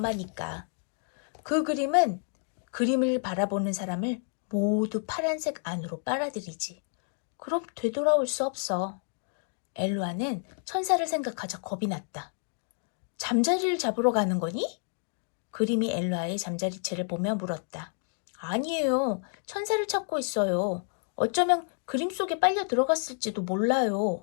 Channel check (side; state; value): right; silent; 57 dB below the other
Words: 그 그림은 그림을 바라보는 사람을 모두 파란색 안으로 빨아들이지. 그럼 되돌아올 수 없어. 엘루아는 천사를 생각하자 겁이 났다. 잠자리를 잡으러 가는 거니? 그림이 엘루아의 잠자리채를 보며 물었다. 아니에요. 천사를 찾고 있어요. 어쩌면 그림 속에 빨려 들어갔을지도